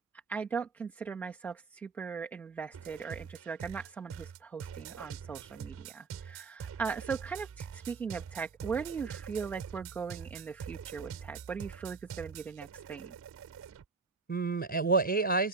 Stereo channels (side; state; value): left; quieter; 4.5 dB